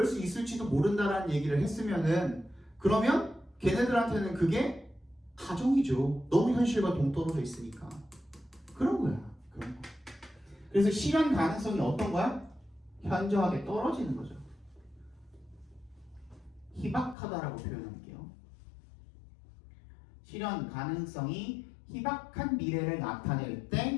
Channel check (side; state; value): right; drops out; at 17.2 s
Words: 수 있을지도 모른다라는 얘기를 했으면은, 그러면 걔네들한테는 그게 가정이죠. 너무 현실과 동떨어져 있으니까. 그런 거야. 그런 거. 그래서 실현 가능성이 어떤 거야? 현저하게 떨어지는 거죠. 희박하다라고 표현할게요. 실현 가능성이 희박한 미래를 나타낼